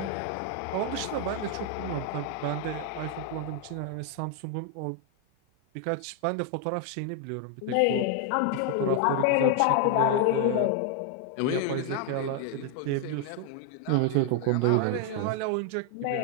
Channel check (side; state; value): both; different; correlation 0.00